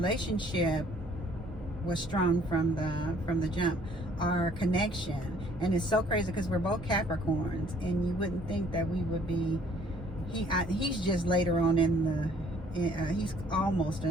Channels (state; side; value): normal; both; correlation 0.59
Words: was strong from the jump. Our connection, and it's so crazy because we're both Capricorns, and you wouldn't think that we would be. He's just later on in the. He's almost